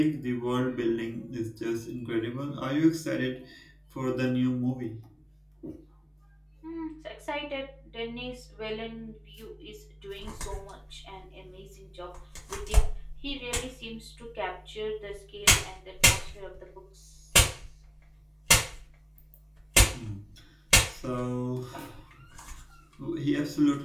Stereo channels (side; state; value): both; identical; correlation 1.00